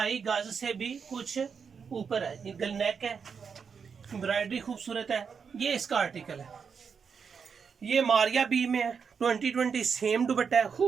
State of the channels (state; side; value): quieter; left; 6.2 dB